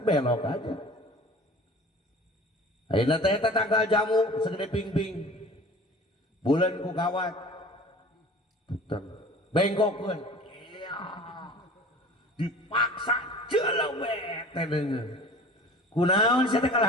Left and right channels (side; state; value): both; normal; correlation 0.43